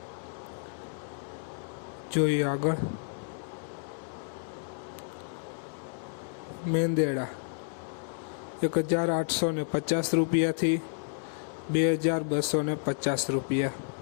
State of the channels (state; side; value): silent; right; 57 dB below the other